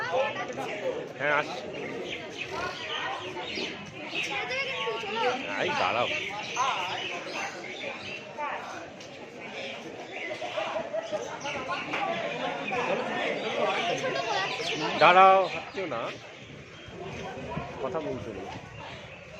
হ্যাঁ, আসছি। এই দাঁড়াও, দাঁড়াও, হাঁটছেও না, কথা বলছো না,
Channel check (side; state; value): both; identical; correlation 1.00